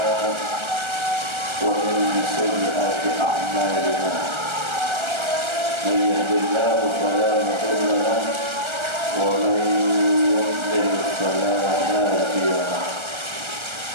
ومن سيئات أعمالنا، من يهد الله فلا مضل له ومن يضلل فلا هادي له.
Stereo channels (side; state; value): left; late; 1.3 ms